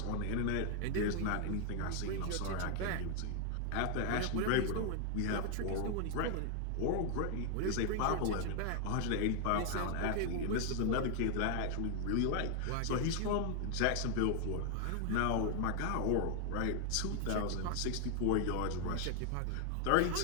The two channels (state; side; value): different; both; correlation 0.00